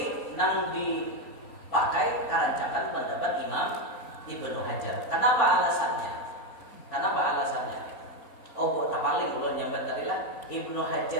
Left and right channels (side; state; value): right; late; 3.5 ms